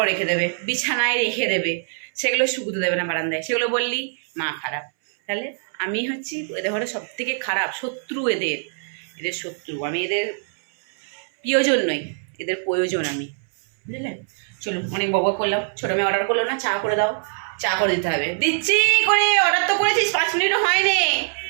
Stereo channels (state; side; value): silent; left; 63 dB below the other